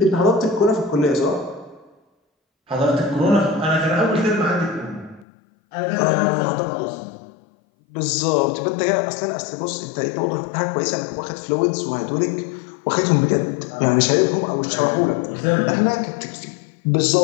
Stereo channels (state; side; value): drops out; right; at 5.2 s